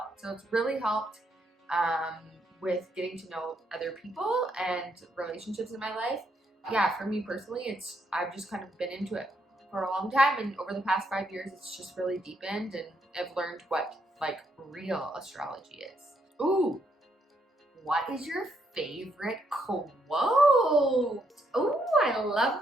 it's really helped with getting to know other people and relationships in my life. Yeah, for me personally, I've just kind of been into it for a long time, and over the past 5 years, it's just really deepened, and I've learned what like real astrology is. Ooh, what is your favorite quote? Ooh, I love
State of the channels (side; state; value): both; normal; correlation 0.75